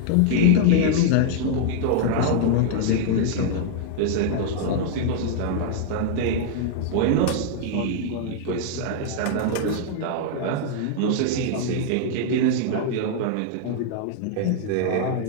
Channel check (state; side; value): different; both; correlation 0.00